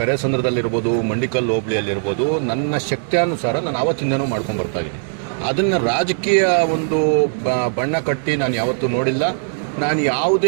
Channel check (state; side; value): silent; left; 66 dB below the other